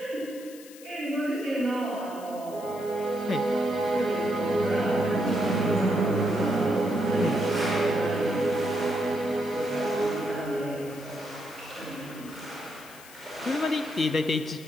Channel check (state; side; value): noise; left; hiss, 19 dB below the sound